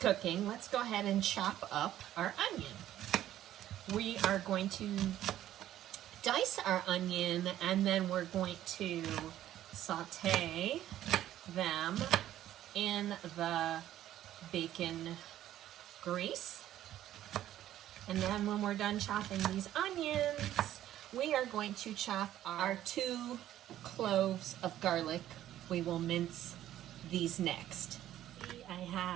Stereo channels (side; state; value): left; quieter; 12.6 dB